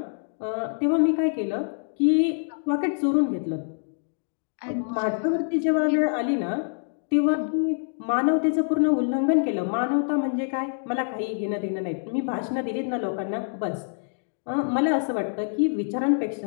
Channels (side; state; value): right; silent; digital silence